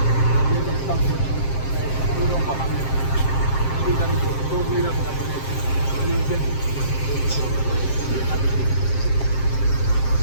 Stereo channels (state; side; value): late; right; 7.6 ms